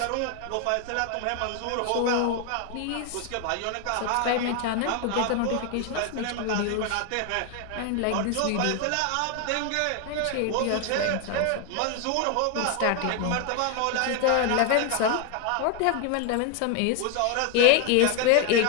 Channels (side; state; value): both; different; correlation 0.01